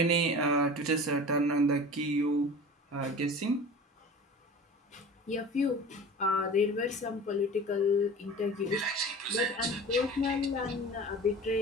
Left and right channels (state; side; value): normal; both; correlation 0.37